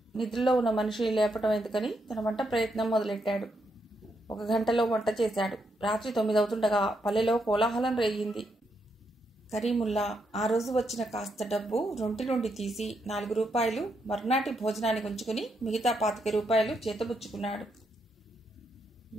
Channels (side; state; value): both; normal; correlation 0.79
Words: నిద్రలో ఉన్న మనిషిని లేపటం ఎందుకని తన వంట ప్రయత్నం మొదలెట్టాడు. 1 గంటలో వంట చేశాడు. రాత్రి 9 అవుతుండగా పల్లెలో కోలాహలం రేగింది. కరీముల్లా ఆ రోజు వచ్చిన కాస్త డబ్బు రొంటి నుండి తీసి 4 రూపాయలు మర్నాటి భోజనానికి ఉంచుకుని మిగతా 25 రూపాయలు చేతబుచ్చుకున్నాడు.